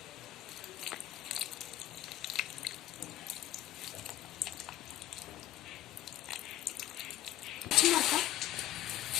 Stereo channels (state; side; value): quieter; right; 13.8 dB